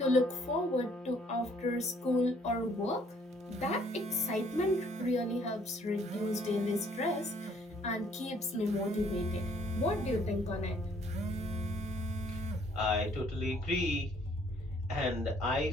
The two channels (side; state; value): both; normal; correlation 0.63